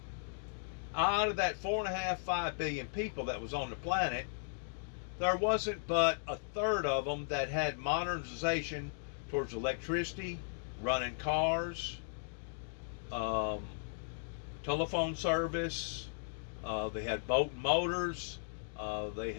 Out of that 4.5, 5 billion people that was on the planet, there wasn't but a third of them that had modernization towards electricity, running cars, telephone service. They had boat and motors. They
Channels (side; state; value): right; silent; digital silence